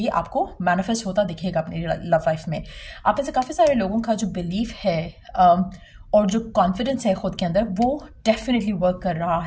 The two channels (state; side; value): identical; both; correlation 1.00